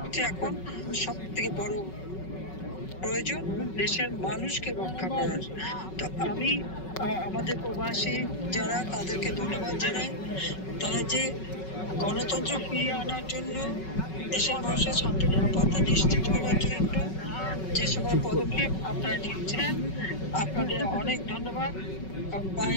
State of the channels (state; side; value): late; right; 5.3 ms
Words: এখন সব থেকে বড় প্রয়োজন, দেশের মানুষকে রক্ষা করার। তো আমি আমাদের প্রবাসী যারা, তাদেরকে ধন্যবাদ জানাই। তারা যে গণতন্ত্র ফিরিয়ে আনার জন্য, দেশের মানুষের শান্তি নিরাপত্তা নিশ্চিত করার জন্য যে সকল পদক্ষেপ আপনারা নিচ্ছেন, আপনাদের অনেক ধন্যবাদ।